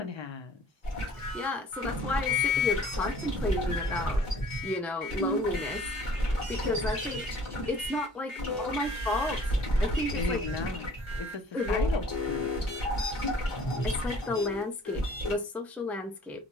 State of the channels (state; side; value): normal; both; correlation 0.53